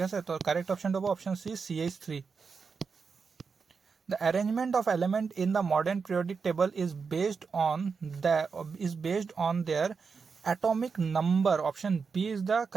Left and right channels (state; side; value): quieter; left; 5.3 dB